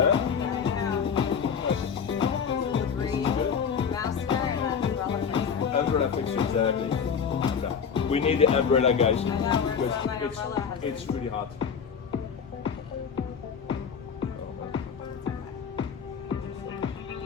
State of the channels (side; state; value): right; quieter; 6.7 dB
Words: Umbrella fixer, exactly. We need the umbrella, guys, because it's really hot.